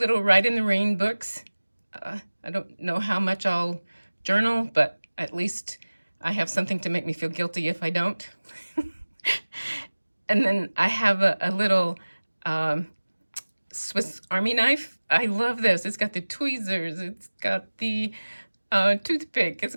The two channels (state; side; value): inverted; both; correlation -1.00